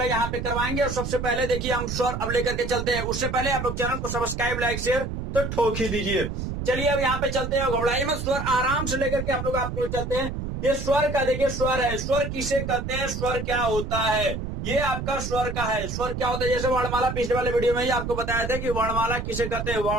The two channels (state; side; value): noise; right; rumble, 5 dB below the sound